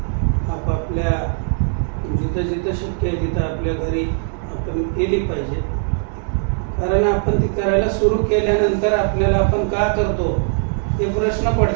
आपापल्या जिथं जिथं शक्य आहे तिथं आपल्या घरी आपण केली पाहिजे. कारण आपण ती करायला सुरू केल्यानंतर आपल्याला आपण का करतो हे प्रश्न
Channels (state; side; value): silent; left; 62 dB below the other